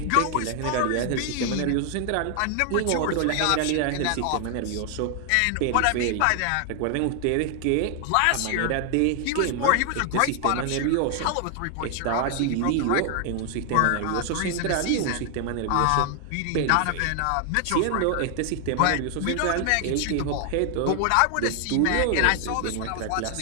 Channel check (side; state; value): both; different; correlation 0.00